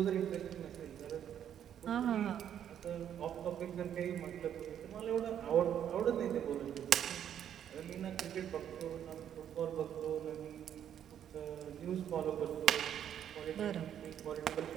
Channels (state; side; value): quieter; left; 9.7 dB